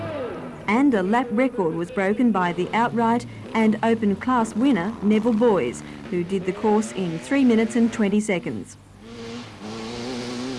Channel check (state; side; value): identical; both; correlation 1.00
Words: and a lap record was broken by the outright and open class winner Neville Boys, who did the course in 3 minutes and 20 seconds.